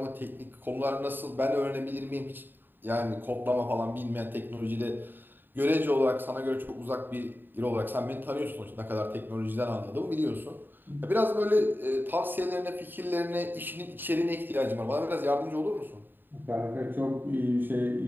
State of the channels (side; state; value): left; late; 0.093 ms